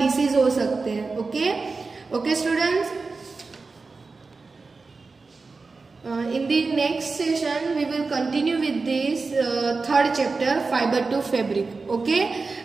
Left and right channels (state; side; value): quieter; left; 4.1 dB